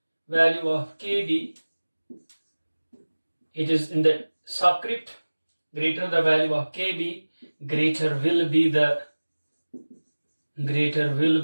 it is in the subscript, greater the value of Kb, greater will be the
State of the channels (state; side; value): inverted; both; correlation -1.00